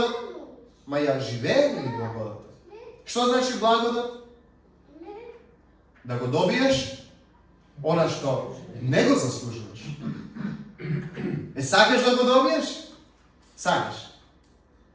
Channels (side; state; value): both; identical; correlation 1.00